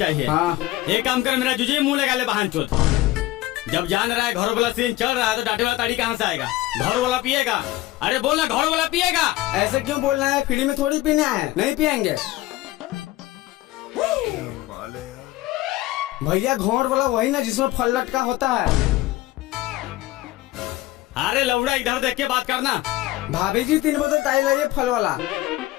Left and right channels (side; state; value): right; quieter; 17.1 dB